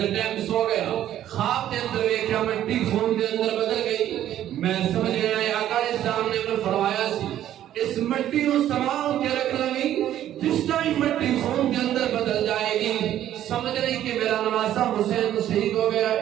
کے ٹائم سو گیا خواب کے اندر دیکھا مٹی خون کے اندر بدل گئی. میں سمجھ گیا آقا اسلام نے فرمایا سی اس مٹی کو سنبھال کے رکھ لگی جس ٹائم مٹی خون کے اندر بدل جائے گی سمجھ رہی کہ میرا نواسا حسین شہید ہو گیا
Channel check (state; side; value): quieter; left; 11.9 dB